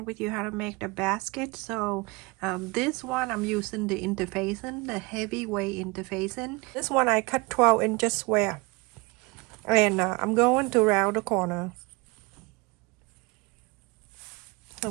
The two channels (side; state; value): left; quieter; 26.3 dB